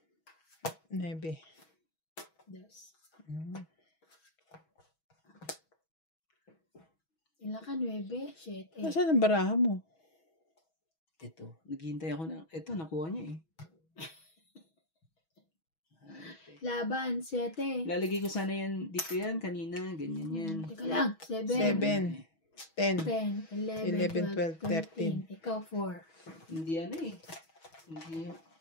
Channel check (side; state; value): right; late; 6.2 ms